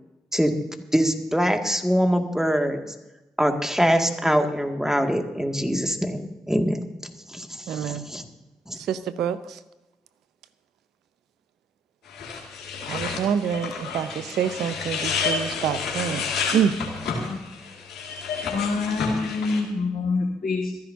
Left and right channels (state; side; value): normal; both; correlation 0.77